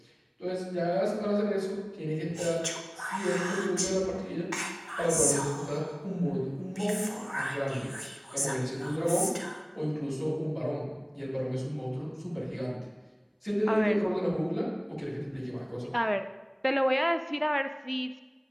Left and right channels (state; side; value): identical; both; correlation 1.00